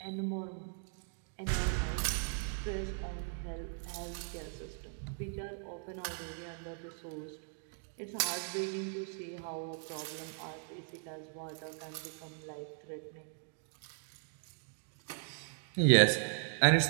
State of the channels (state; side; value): silent; left; 53 dB below the other